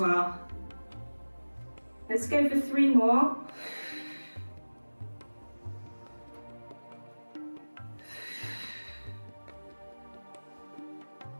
Let's go for 3 more.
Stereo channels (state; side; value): inverted; both; correlation -1.00